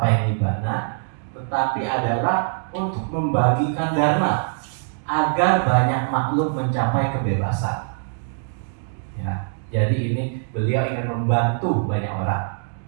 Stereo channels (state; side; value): silent; left; digital silence